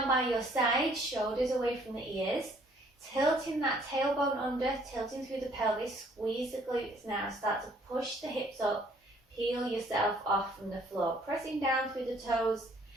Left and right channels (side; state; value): both; normal; correlation 0.62